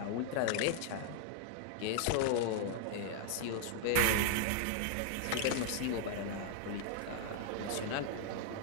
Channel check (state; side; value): different; both; correlation 0.00